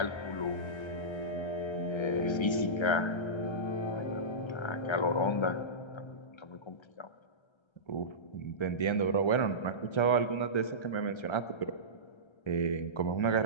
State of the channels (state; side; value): late; right; 1.3 ms